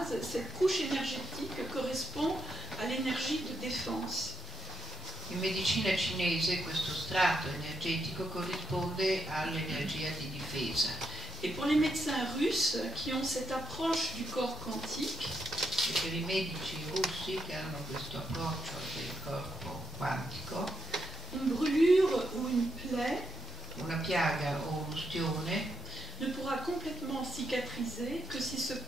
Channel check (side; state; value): both; normal; correlation 0.84